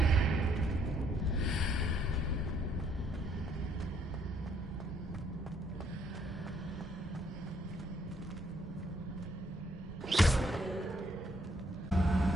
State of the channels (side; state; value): both; normal; correlation 0.69